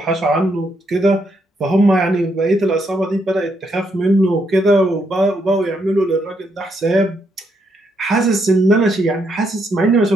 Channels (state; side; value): normal; both; correlation 0.76